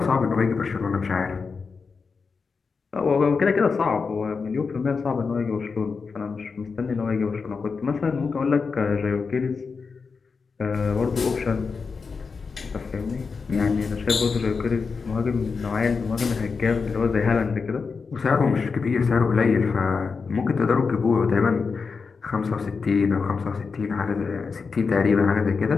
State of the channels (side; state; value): right; quieter; 5.0 dB